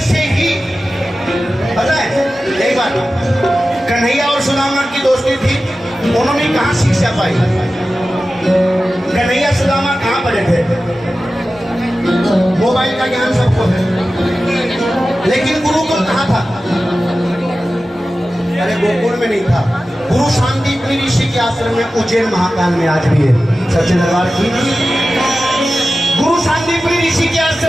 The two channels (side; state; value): both; normal; correlation 0.94